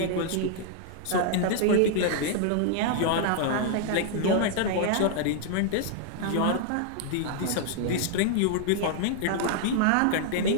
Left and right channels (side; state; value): both; different; correlation -0.01